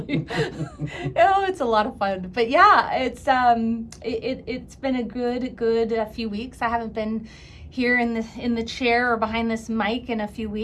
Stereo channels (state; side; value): identical; both; correlation 1.00